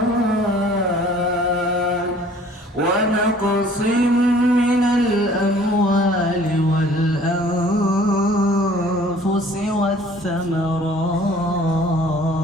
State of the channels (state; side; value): normal; both; correlation 0.53